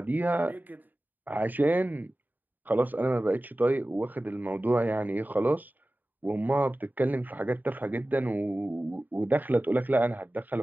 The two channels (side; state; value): left; late; 0.087 ms